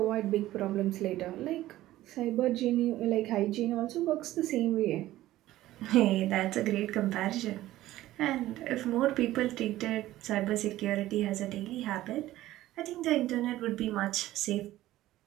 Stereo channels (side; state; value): left; quieter; 15.2 dB